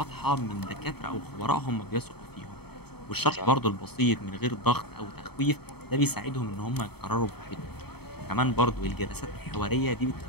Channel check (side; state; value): right; late; 0.97 ms